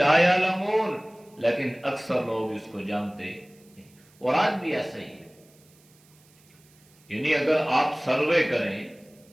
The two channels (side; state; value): right; noise; hiss, 30 dB below the sound